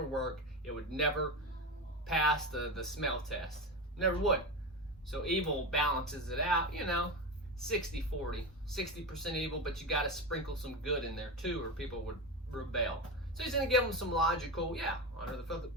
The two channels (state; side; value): normal; both; correlation 0.20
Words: work. It would never pass the smell test. Never would. So evil balances it out, you know, 60-40. 60% evil, but you got to sprinkle some good in there too, or people would rebel. So he's going to give them some logical, honor the